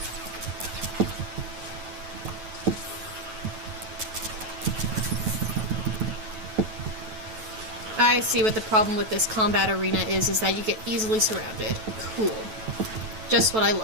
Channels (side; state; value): left; late; 9.2 ms